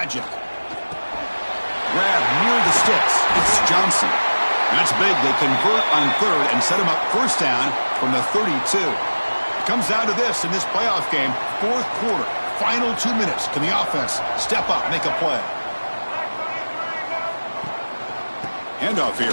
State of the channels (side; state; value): both; inverted; correlation -1.00